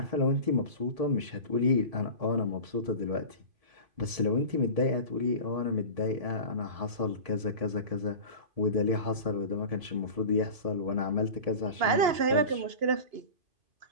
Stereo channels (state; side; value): late; left; 2.9 ms